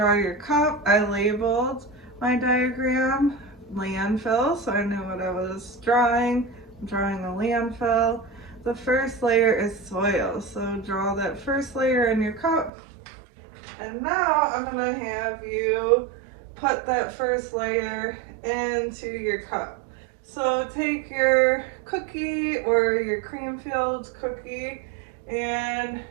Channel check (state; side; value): drops out; left; at 12.7 s